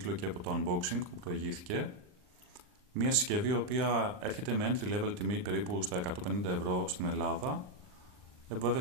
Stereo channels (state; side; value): late; left; 39 ms